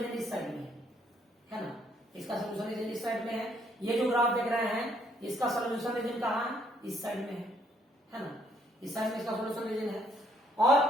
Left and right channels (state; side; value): normal; both; correlation 0.68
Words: इस साइड में है ना, इसका सॉल्यूशन रीजन इस साइड में है। ये जो ग्राफ देख रहे हैं इसका सॉल्यूशन रीजन कहाँ है? इस साइड में है ना, इस साइड में इसका सॉल्यूशन रीजन है। और